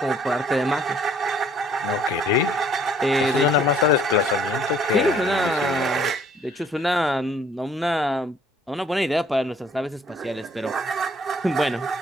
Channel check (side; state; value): both; normal; correlation 0.59